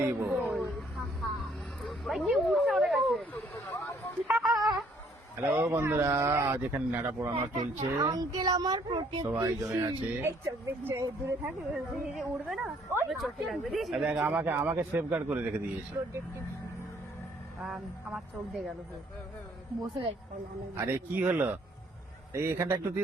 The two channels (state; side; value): normal; both; correlation 0.64